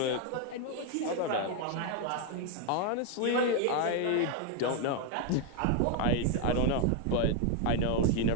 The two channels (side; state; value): both; different; correlation 0.01